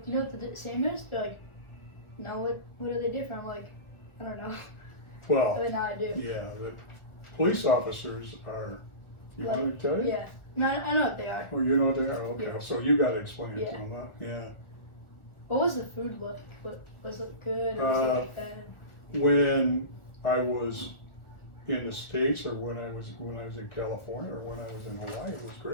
you know what the same is? They're like, no, what are they different? I'm like, I don't know. Well, But now I do. yeah, the police officers are, you want me to tell you? Yeah. No, I know what they are. Oh, you know what they are? Okay, Yeah. so you gotta explain it Yeah. to them, huh? Yeah. What was the food like? Was it good or was it like bad? When I was in the States, or when I was in California, or when I was in Hawaii, it was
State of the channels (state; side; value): late; right; 1.3 ms